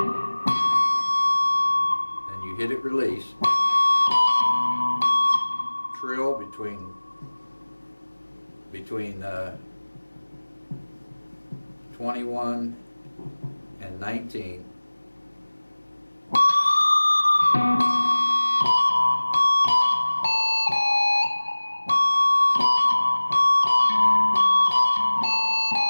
then you hit it release. Trill between 21 and 19.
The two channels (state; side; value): inverted; both; correlation -1.00